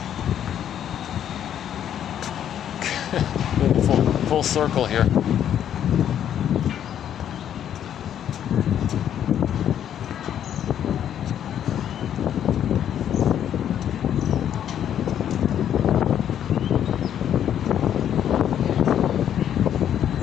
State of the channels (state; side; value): quieter; right; 9.9 dB